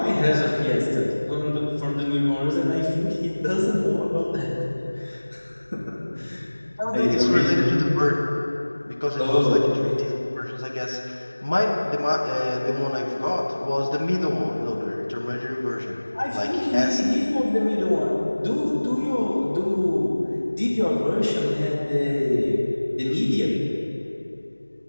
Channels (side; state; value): both; inverted; correlation -1.00